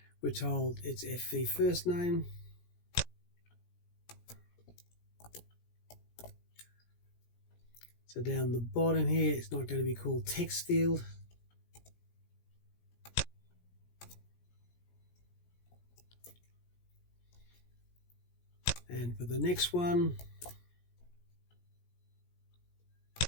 we're told it's FV first name. So down the bottom here, it's not going to be called text field. And for the next one,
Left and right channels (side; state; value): right; late; 17 ms